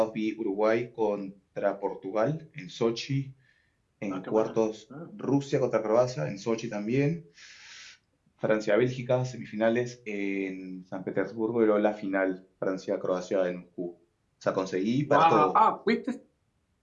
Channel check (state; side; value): identical; both; correlation 1.00